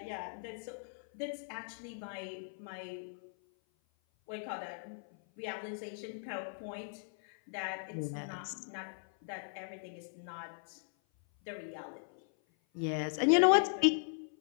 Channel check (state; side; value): silent; right; 53 dB below the other